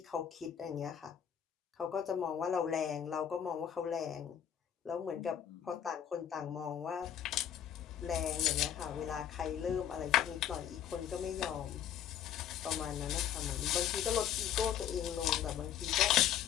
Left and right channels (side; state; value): right; quieter; 9.5 dB